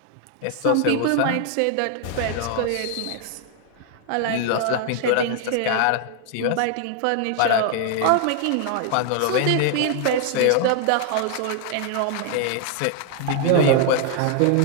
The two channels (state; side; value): different; both; correlation 0.00